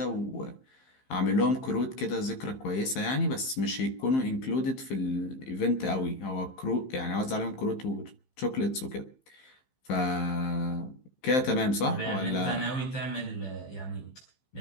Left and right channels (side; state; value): right; late; 15 ms